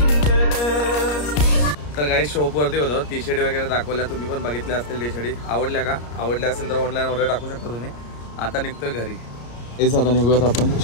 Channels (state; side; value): late; right; 34 ms